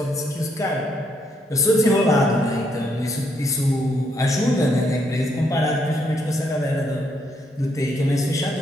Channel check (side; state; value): both; normal; correlation 0.74